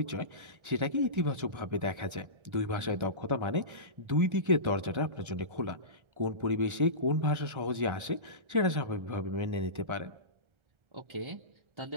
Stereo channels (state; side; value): late; left; 1.3 ms